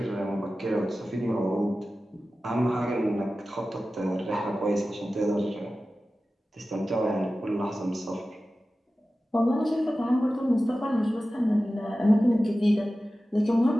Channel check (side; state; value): both; normal; correlation 0.95